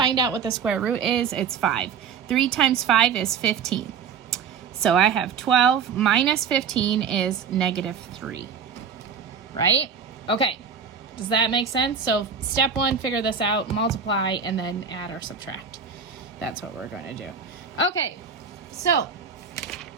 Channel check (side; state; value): left; quieter; 6.5 dB